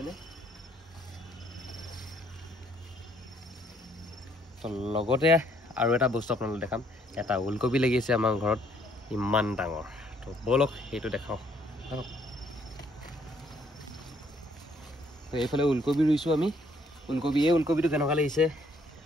তো লগতে আৰু এটা বস্তু আপোনালোকক দেখাম এটা ওলকবি লাগি আছে আমাৰ ঘৰত ইমান ডাঙৰ তো বলক সেইটো দেখাওঁ তো এইফালে ওলকবি ৰুইছোঁ আমি এই ওলকবিটো কেনেকুৱা লাগিছে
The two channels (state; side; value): normal; both; correlation 0.66